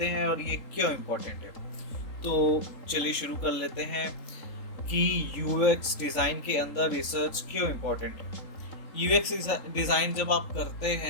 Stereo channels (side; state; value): right; late; 3.8 ms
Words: हैं और ये क्यों इम्पोर्टेंट है। तो चलिए शुरू कर लेते हैं कि यूएक्स डिज़ाइन के अंदर रिसर्च क्यों इम्पोर्टेंट है। यूएक्स डिज़ाइन जब आप करते